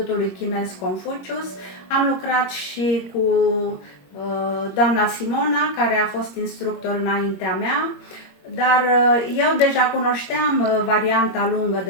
Chinez Confucius. Am lucrat și cu doamna Simona, care a fost instructor înaintea mea, dar eu deja cunoșteam varianta lungă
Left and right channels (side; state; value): right; late; 21 ms